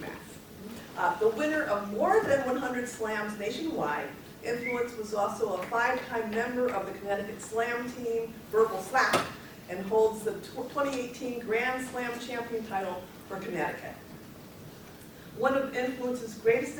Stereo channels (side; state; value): both; identical; correlation 1.00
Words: The winner of more than 100 slams nationwide, Influence was also a 5-time member of the Connecticut Slam team, Verbal Slap, and holds the 2018 Grand Slam champion title for Connecticut. One of Influence's greatest